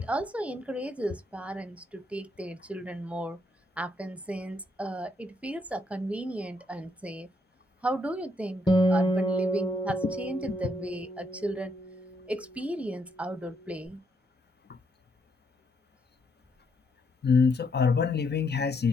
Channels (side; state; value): both; normal; correlation 0.74